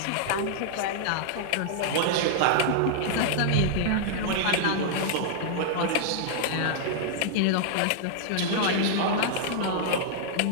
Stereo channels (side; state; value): both; different; correlation -0.01